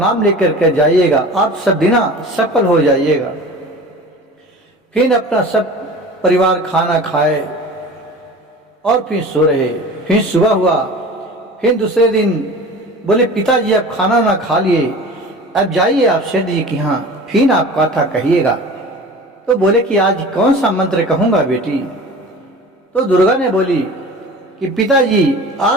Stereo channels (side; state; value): both; normal; correlation 0.38